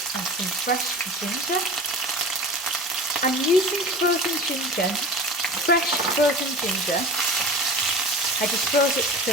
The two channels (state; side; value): normal; both; correlation 0.36